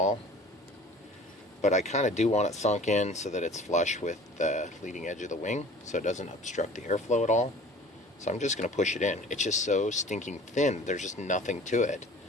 but I kind of do want it sunk in so that it's flush with the leading edge of the wing, so it doesn't obstruct the airflow at all. So I'm just going to push it in. It's just so stinking thin, there's just nothing to it.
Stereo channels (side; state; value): both; normal; correlation 0.46